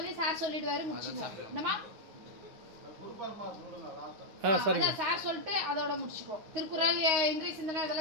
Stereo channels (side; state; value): left; late; 9.5 ms